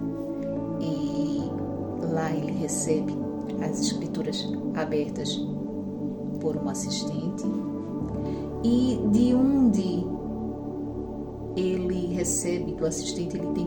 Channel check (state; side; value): identical; both; correlation 1.00